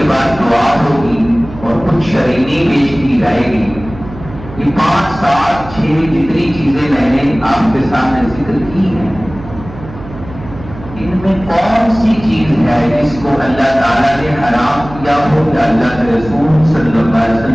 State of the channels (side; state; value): right; noise; hum, 15 dB below the sound